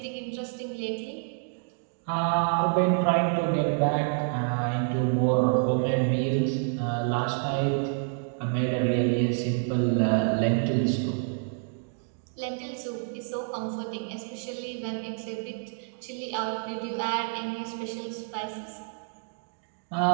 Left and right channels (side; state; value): left; silent; 59 dB below the other